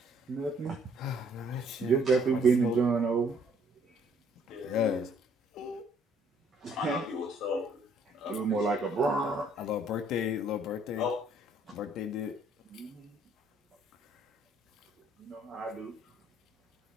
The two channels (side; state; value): both; normal; correlation 0.63